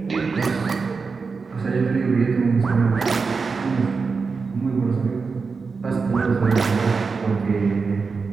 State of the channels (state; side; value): quieter; left; 4.8 dB